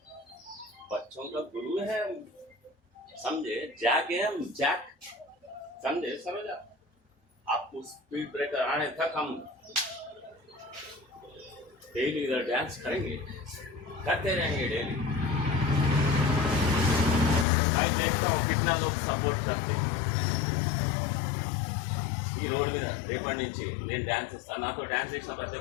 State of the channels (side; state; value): right; drops out; at 17.4 s